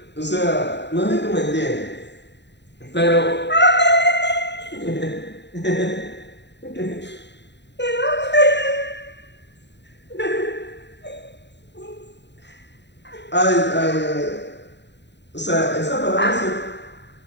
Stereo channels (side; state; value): right; late; 0.51 ms